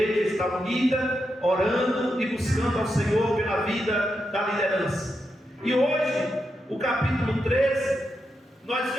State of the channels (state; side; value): normal; both; correlation 0.85